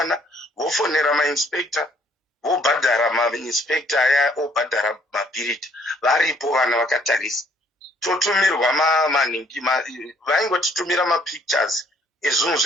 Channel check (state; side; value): normal; both; correlation 0.63